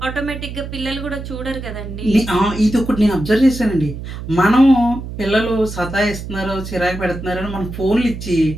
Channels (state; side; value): noise; right; hum, 9 dB below the sound